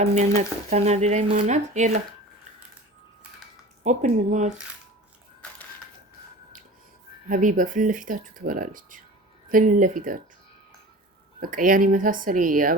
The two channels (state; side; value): normal; both; correlation 0.38